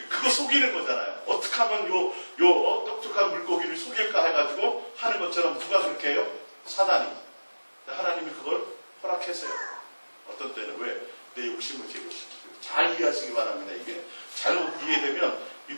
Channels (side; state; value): both; inverted; correlation -1.00